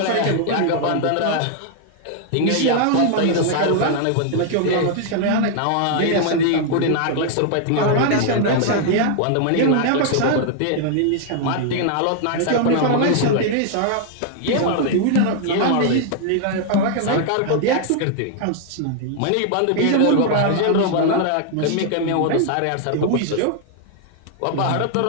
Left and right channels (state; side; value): different; both; correlation 0.00